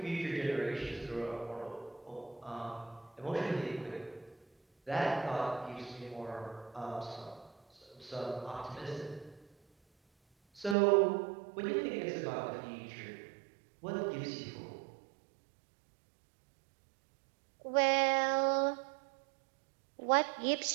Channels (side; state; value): left; drops out; at 10.8 s